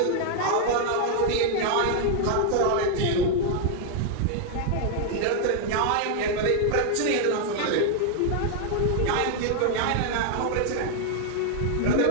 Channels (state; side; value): different; both; correlation 0.00